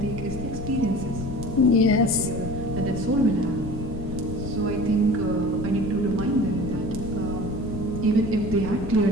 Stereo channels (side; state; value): left; noise; rumble, 7 dB below the sound